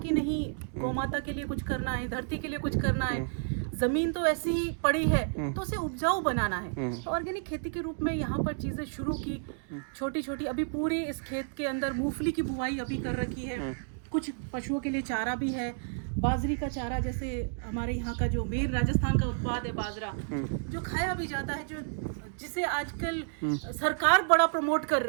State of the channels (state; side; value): silent; left; digital silence